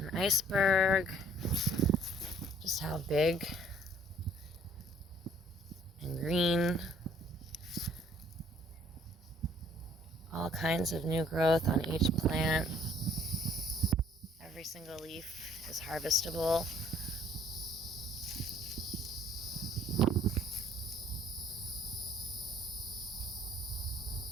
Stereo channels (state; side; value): normal; both; correlation 0.60